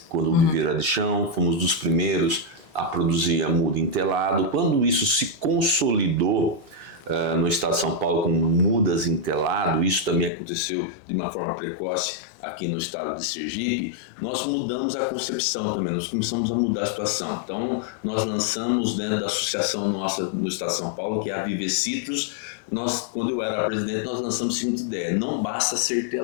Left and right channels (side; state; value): right; drops out; at 10.3 s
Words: quando o viveiro era de chão, fomos dos primeiros a produzir a muda em telado. Quando isso se consolidou no estado de São Paulo com mudas em telado, isso também aconteceu de uma forma precoce aqui no estado de Sergipe, nós mudamos a concepção também, nós começamos a mudar a situação. Então nós lançamos dentro da associação nossa no estado de São Paulo, que é a Viver Citrus, quando eu era presidente, nós lançamos a seguinte ideia: não basta ser